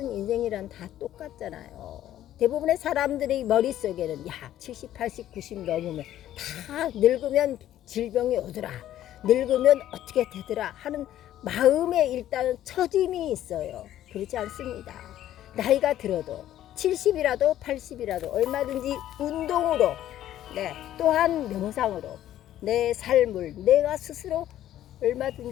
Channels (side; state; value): right; quieter; 12.5 dB